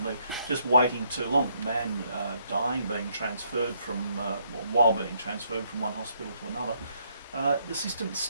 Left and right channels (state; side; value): inverted; both; correlation -0.72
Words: leg, just waiting too long. Man dying, being transferred from, while being transferred from one hospital to another. The system